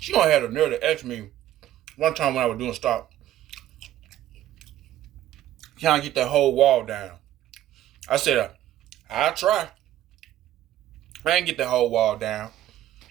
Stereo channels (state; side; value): quieter; left; 12.8 dB